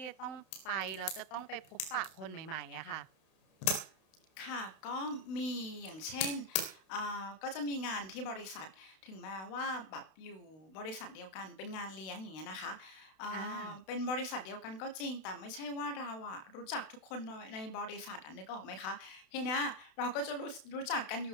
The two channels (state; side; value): late; right; 32 ms